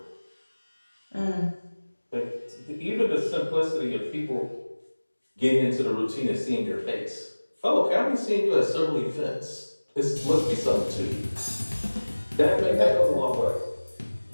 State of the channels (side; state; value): both; inverted; correlation -1.00